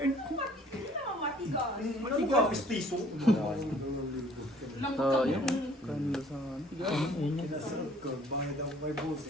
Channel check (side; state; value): both; normal; correlation 0.56